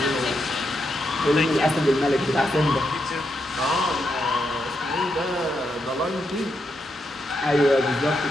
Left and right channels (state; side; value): normal; both; correlation 0.82